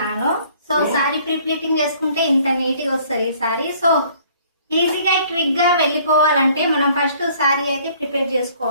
సో సారీ ప్రీప్లేటింగ్ చేసుకుంటే ఇంత నీట్గా వస్తుంది సారీ. సో ఈజీగా క్విక్ గా వెళ్ళిపోవాలంటే మనం ఫస్ట్ సారీ అయితే ప్రిపేర్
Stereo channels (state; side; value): inverted; both; correlation -0.58